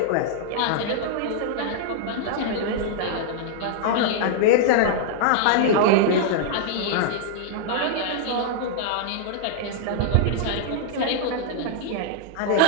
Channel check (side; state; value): both; different; correlation -0.01